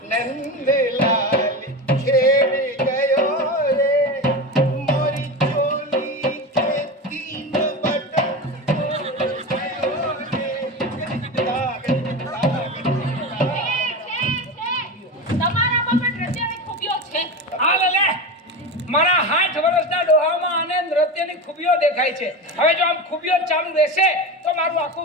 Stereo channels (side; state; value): both; normal; correlation 0.24